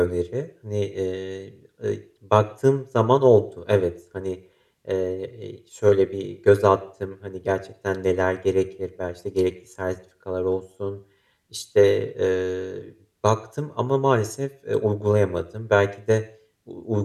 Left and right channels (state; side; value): identical; both; correlation 1.00